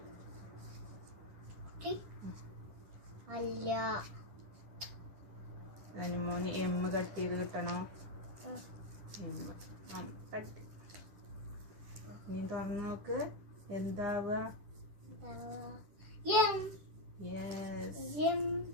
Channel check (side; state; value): left; late; 10 ms